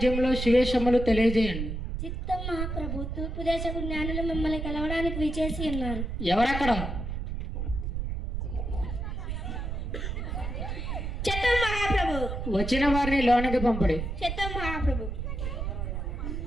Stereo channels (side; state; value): right; noise; rumble, 4 dB below the sound